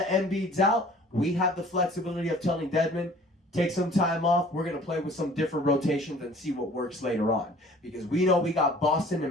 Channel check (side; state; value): both; normal; correlation 0.51